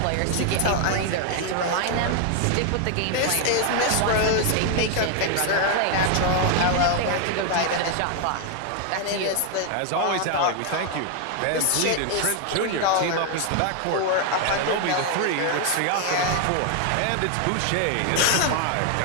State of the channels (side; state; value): both; different; correlation 0.00